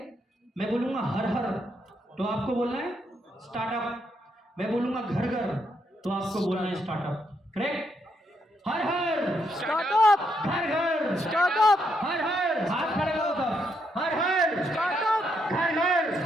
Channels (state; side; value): normal; both; correlation 0.77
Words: मैं बोलूंगा हर हर, तो आपको बोलना है स्टार्टअप। मैं बोलूंगा घर घर, तो आपको बोलना है स्टार्टअप। करेक्ट? हर हर स्टार्टअप, घर घर स्टार्टअप, हर हर, हाथ खड़े करो तब, हर हर स्टार्टअप, घर घर